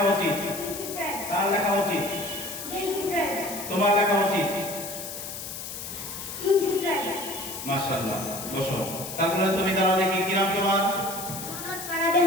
উচিত, তার লেখা উচিত, তোমার লেখা উচিত। মাশাআল্লাহ। বসো। তারপরে তুমি দাঁড়াও দেখি। কি নাম তোমার?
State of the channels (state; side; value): noise; left; hiss, 8 dB below the sound